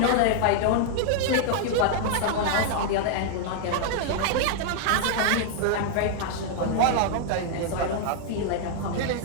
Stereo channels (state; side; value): different; both; correlation -0.01